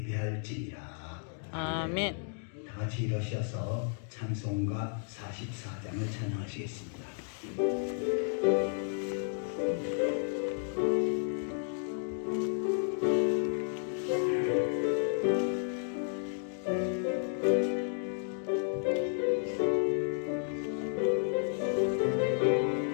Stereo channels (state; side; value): silent; right; 56 dB below the other